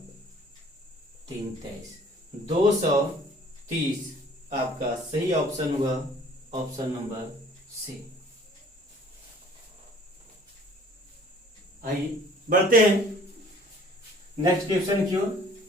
3 23, 230 आपका सही ऑप्शन हुआ, ऑप्शन नंबर सी। आइए बढ़ते हैं नेक्स्ट क्वेश्चन की ओर।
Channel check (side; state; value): both; normal; correlation 0.53